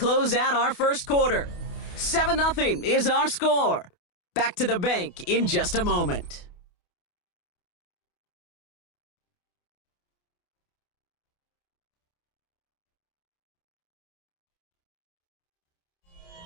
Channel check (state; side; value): late; right; 28 ms